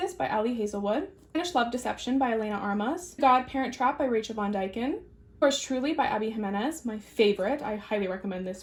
by Ali Hazelwood, Spanish Love Deception by Elena Armas, Godparent Trap by Rachel Von Dyken, Yours Truly by Abby Jimenez, my favorite. I highly recommend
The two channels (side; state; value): both; identical; correlation 1.00